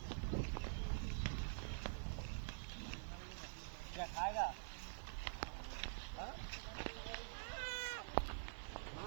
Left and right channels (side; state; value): left; silent; digital silence